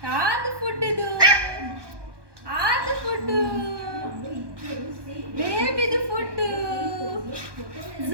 ಯಾವ್ದು ಫುಡ್ ಇದು? ಆದ ಫುಡ್ಡು, ಬೇಬಿದು ಫುಡ್ಡು,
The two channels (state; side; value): late; left; 1.2 ms